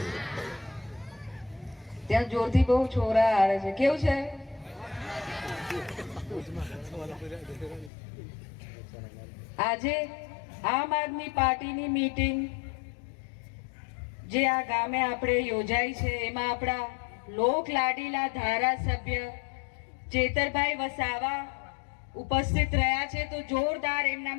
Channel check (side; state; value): right; drops out; at 7.9 s